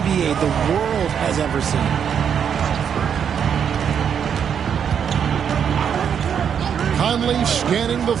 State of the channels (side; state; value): left; quieter; 7.8 dB